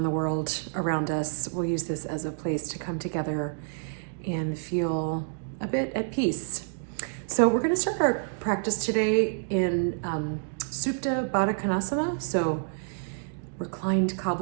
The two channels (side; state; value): left; silent; digital silence